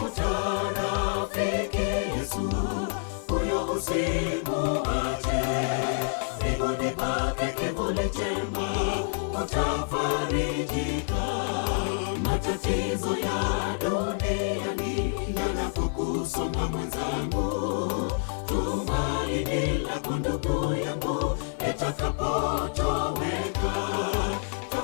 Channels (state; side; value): silent; right; 55 dB below the other